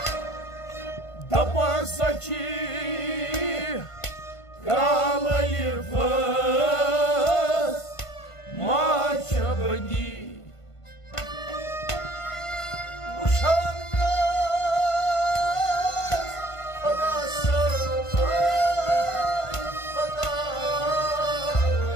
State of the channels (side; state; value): right; late; 1.5 ms